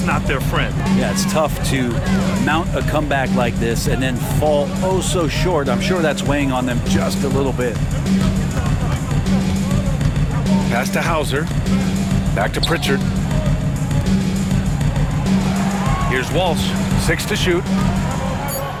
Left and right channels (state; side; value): identical; both; correlation 1.00